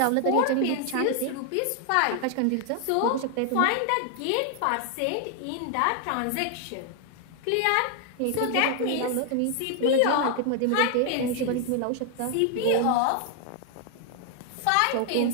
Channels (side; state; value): both; different; correlation 0.00